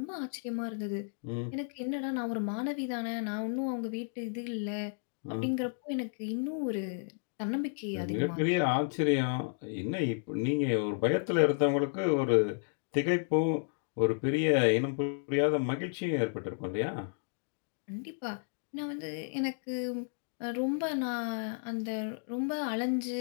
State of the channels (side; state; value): right; silent; digital silence